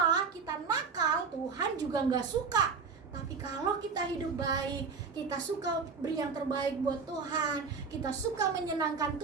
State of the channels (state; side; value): quieter; left; 5.3 dB